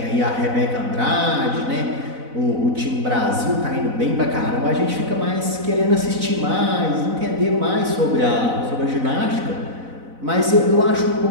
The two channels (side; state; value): left; late; 4.0 ms